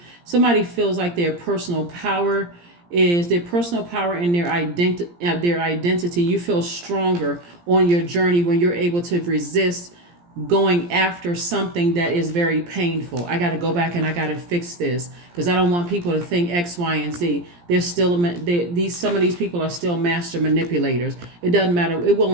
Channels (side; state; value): left; late; 17 ms